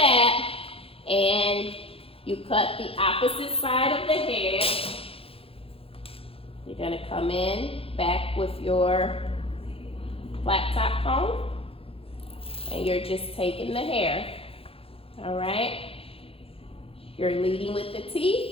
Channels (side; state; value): right; late; 0.27 ms